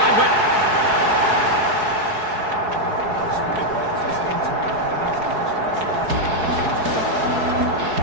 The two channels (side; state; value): left; late; 4.7 ms